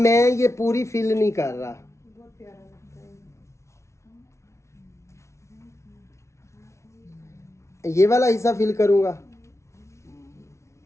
ये पूरी फिल नहीं कर रहा, ये वाला हिस्सा फिल करूंगा।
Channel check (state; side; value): late; right; 0.13 ms